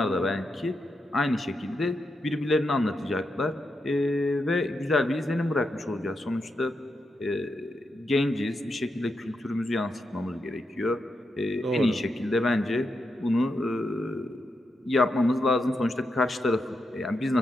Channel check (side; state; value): both; normal; correlation 0.85